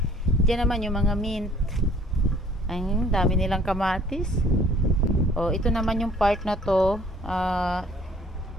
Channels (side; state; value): both; normal; correlation 0.57